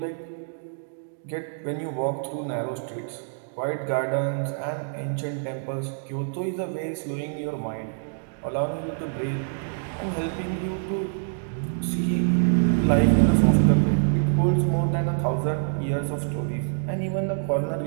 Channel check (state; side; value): silent; left; digital silence